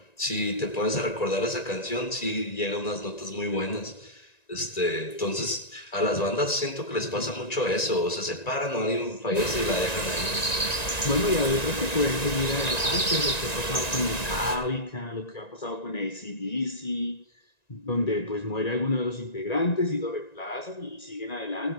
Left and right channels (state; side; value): late; right; 1.9 ms